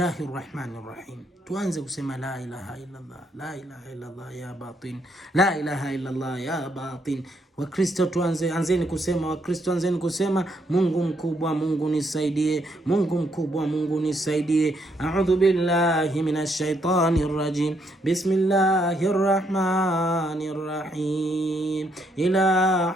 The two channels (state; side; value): normal; both; correlation 0.74